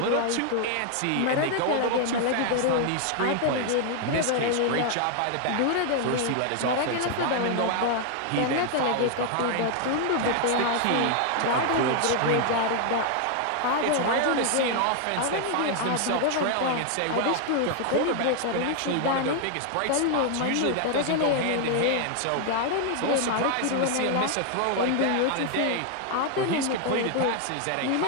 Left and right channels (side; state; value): both; different; correlation 0.00